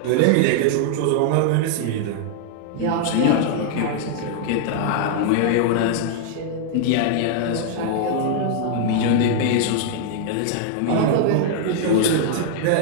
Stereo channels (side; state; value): both; different; correlation -0.01